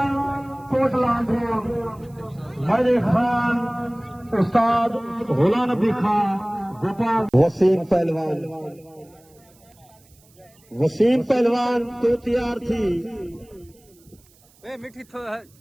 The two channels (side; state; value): right; noise; hiss, 30 dB below the sound